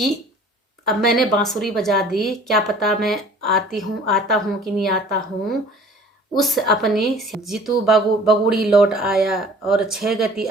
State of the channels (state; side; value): normal; both; correlation 0.49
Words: अब मैंने बांसुरी बजा दी, क्या पता मैं आता हूँ कि नहीं आता हूँ। उस अपनी जीतू बगुड़ी लौट आया और 6 गति